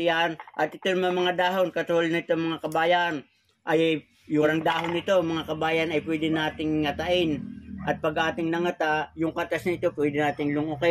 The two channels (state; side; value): identical; both; correlation 1.00